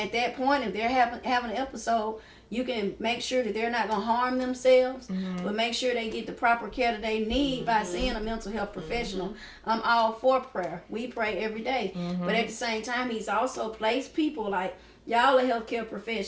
that point, if they're having an episode, you can make sure that they're not going to harm themselves, but make sure they get the proper care that they need by seeing a mental health professional. I'm all for prayer. We pray every day. But at the same time, he's also placed people like, y'all are healthcare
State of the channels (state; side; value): identical; both; correlation 1.00